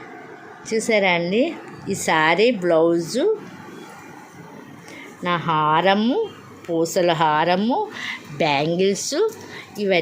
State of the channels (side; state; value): both; identical; correlation 1.00